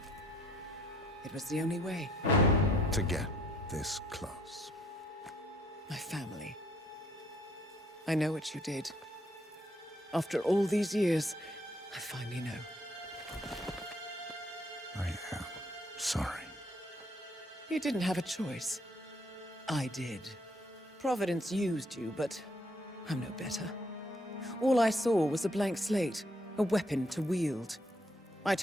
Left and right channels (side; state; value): both; normal; correlation 0.67